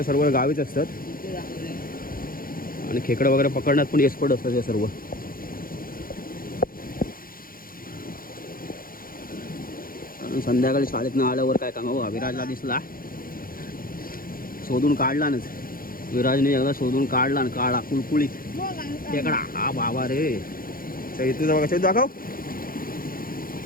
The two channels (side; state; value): right; late; 0.42 ms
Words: सर्व गावीच असतात आणि खेकडं वगैरे पकडण्यात पण एक्सपर्ट असतात हे सर्व. कारण संध्याकाळी शाळेतनं आल्यावर काय काम बघा विराजला दिसला शोधून काढला ना. विराजने एकदा शोधून काढला ना काढा कुळकुळीत खेकडा. हा बाबा रे चैतूचा बघा. चैतू दाखव.